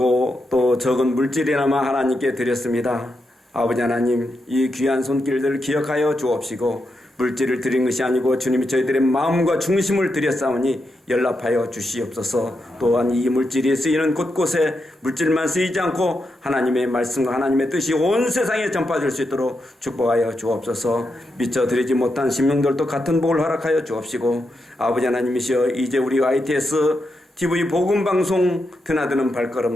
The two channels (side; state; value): both; normal; correlation 0.85